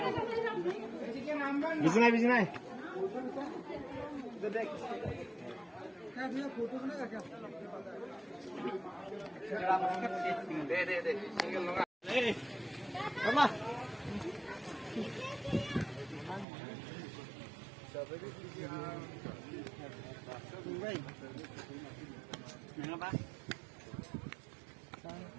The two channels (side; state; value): left; drops out; at 16.4 s